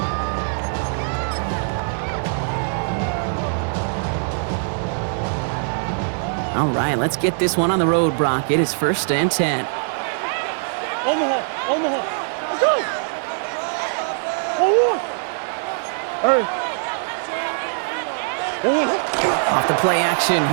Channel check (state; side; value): silent; left; digital silence